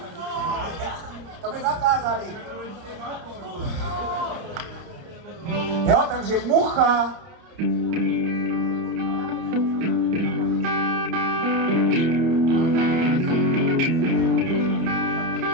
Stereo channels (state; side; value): late; left; 30 ms